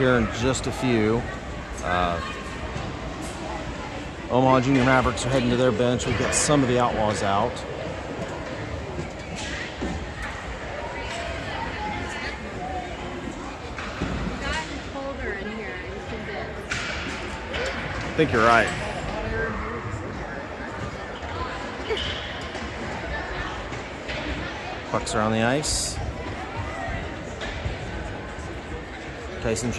in just a few. Omaha Junior Mavericks are heading to their bench. We've got some of the Outlaws out. I think you're right. Pucks are on the ice. Tyson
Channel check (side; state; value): both; identical; correlation 1.00